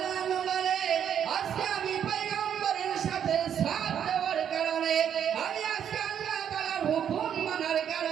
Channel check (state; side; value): quieter; left; 8.9 dB